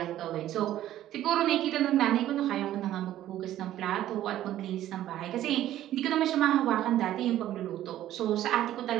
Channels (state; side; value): quieter; left; 13.0 dB